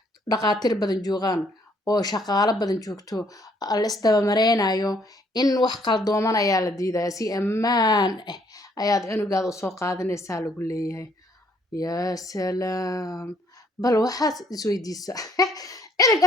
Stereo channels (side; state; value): both; normal; correlation 0.65